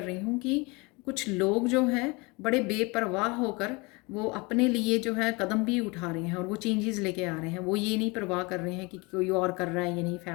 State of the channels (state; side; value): quieter; right; 26.7 dB